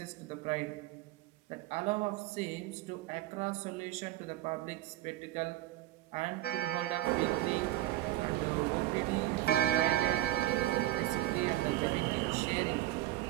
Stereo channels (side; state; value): left; quieter; 15.5 dB